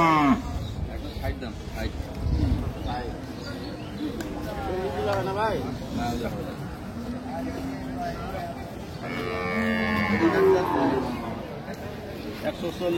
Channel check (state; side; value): identical; both; correlation 1.00